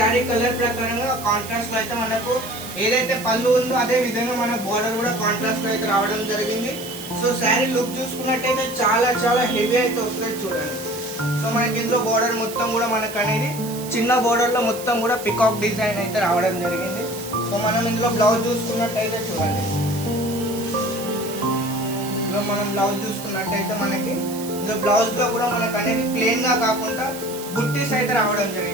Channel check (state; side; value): noise; right; hiss, 12 dB below the sound